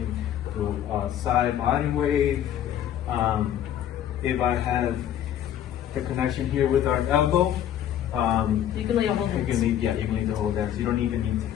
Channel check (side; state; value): right; quieter; 10.8 dB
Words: do a side body wave. If I have the connection here with our elbow, You can lead a whole dance. you can lead the whole dance. You don't even need